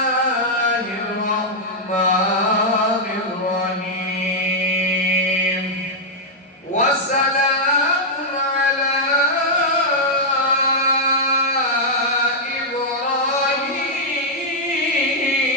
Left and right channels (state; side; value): normal; both; correlation -0.05